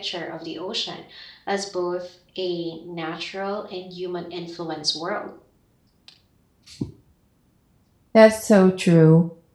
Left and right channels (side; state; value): both; identical; correlation 1.00